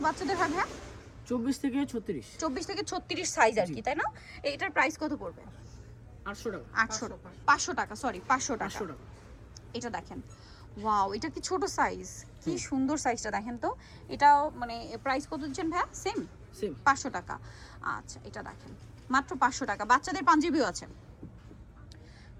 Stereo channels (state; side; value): identical; both; correlation 1.00